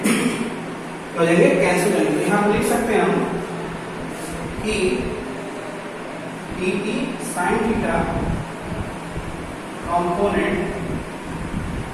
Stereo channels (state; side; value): identical; both; correlation 1.00